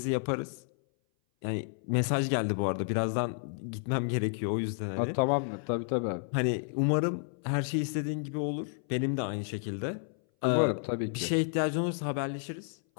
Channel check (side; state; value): right; silent; 57 dB below the other